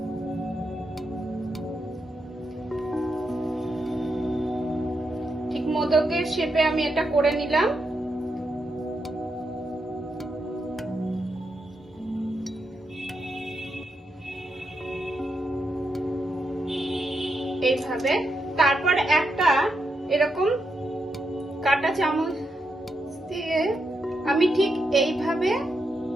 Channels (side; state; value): both; normal; correlation 0.83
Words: ঠিক মোদকের শেপে আমি এটা করে নিলাম। এইভাবে তারপর একটা এরকম কাঁটা চামচ দিয়ে আমি ঠিক এইভাবে